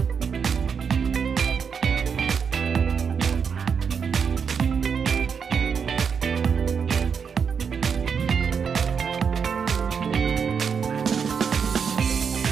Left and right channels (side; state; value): left; quieter; 6.5 dB